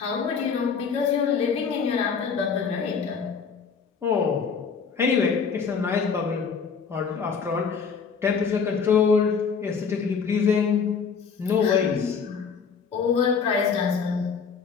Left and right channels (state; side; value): quieter; right; 5.9 dB